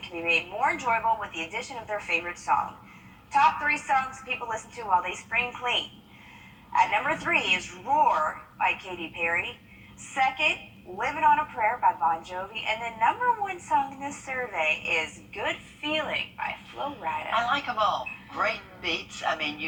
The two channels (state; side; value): identical; both; correlation 1.00